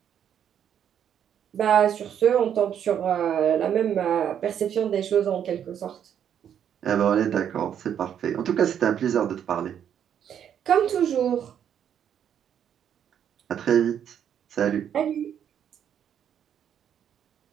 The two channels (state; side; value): quieter; left; 9.1 dB